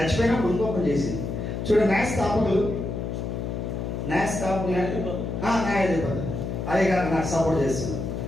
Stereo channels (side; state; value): left; noise; hum, 4 dB below the sound